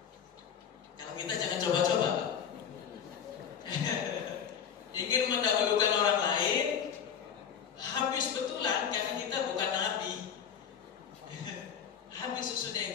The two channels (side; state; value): right; quieter; 7.8 dB